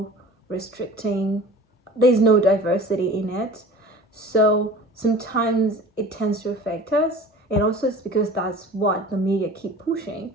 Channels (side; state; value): both; normal; correlation 0.41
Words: restricting. There's no diversity in it. So sometimes it tends to affect us. And also it's because that's what the media keep pushing.